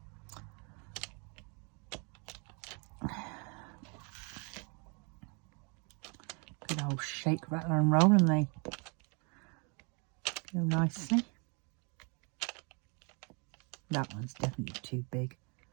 Good old shake, rattle and roll, and they go nicely. That one's definitely too big.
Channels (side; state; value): left; quieter; 33.9 dB